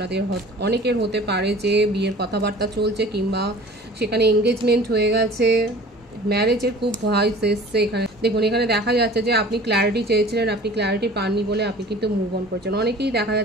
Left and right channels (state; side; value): normal; both; correlation 0.45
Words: অনেকের হতে পারে যে বিয়ের কথাবার্তা চলছে, কিংবা সেখানে এঙ্গেজমেন্ট হয়ে গেছে, ম্যারেজের খুব ভয়েস এসছে। এখানে দেখুন, এখানে দেখা যাচ্ছে যে আপনি ক্ল্যারিটি চেয়েছিলেন, আপনি ক্ল্যারিটি পাননি বলে আপনি কিন্তু মুভ অন করেছেন। অনেকেই দেখা